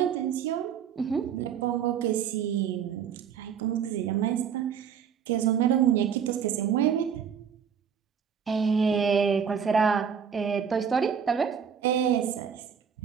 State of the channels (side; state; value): left; quieter; 7.5 dB